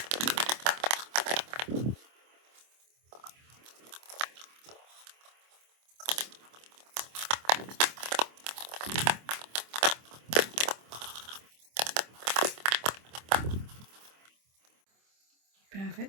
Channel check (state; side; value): late; left; 25 ms